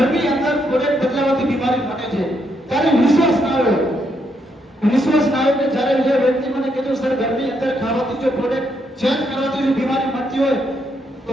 અંદર પ્રોડક્ટ બદલાવાથી બીમારી મટે છે. ત્યારે વિશ્વાસ ના આવ્યો કે જ્યારે જે વ્યક્તિ મને કીધું સર ઘરની અંદર ખાવાથી જો પ્રોડક્ટ ચેન્જ કરવાથી જો બીમારી મટતી હોય તો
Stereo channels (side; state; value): both; normal; correlation 0.77